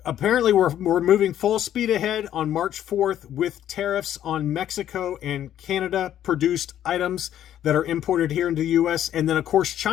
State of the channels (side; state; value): right; quieter; 11.2 dB